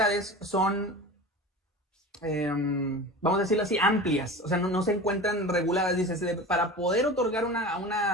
son, vamos a decirlo así, amplias, o sea, no se encuentran reguladas. Dice, para poder otorgar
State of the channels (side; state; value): both; normal; correlation 0.33